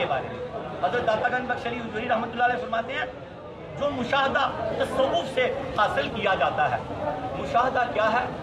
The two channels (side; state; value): both; identical; correlation 1.00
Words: بارے میں. حضرت داتا گنج بخش علی حجویری رحمۃ اللہ علیہ فرماتے ہیں جو مشاہدہ تصوف سے حاصل کیا جاتا ہے. مشاہدہ کیا ہے؟